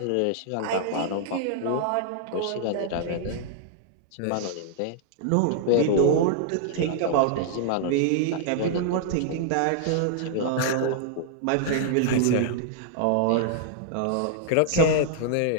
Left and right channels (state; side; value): different; both; correlation -0.01